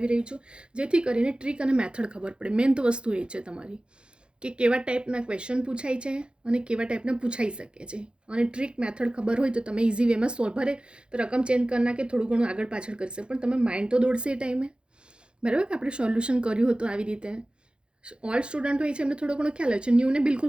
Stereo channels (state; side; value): late; left; 0.054 ms